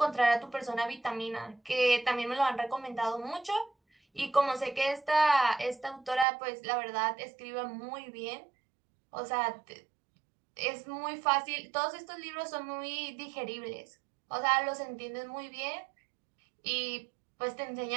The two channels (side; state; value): left; drops out; at 6.2 s